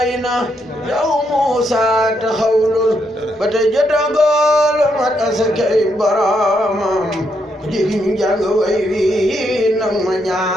na yow Muusa taxawlul ba te jotagol mat asakay boromam ku jigi ñu jàng way wi nag ma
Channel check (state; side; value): normal; both; correlation 0.77